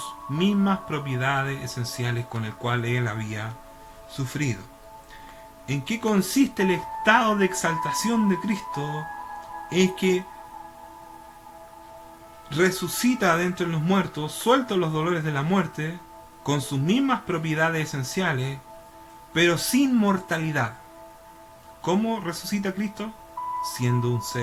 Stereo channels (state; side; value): identical; both; correlation 1.00